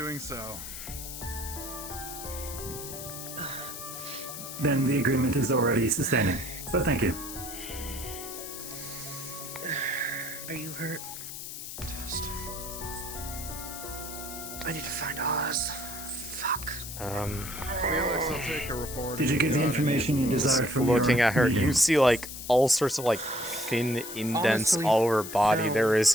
so. Then the agreement is already sustaining. But thank you. Are you hurt? Test. I need to find Oz. Fuck. Felix, I'll take a report. Did you get the information you desired from Looking your at her, meeting? you see like all sorts of like thin indents Honestly, all over her body. no. There is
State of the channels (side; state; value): left; noise; hiss, 9 dB below the sound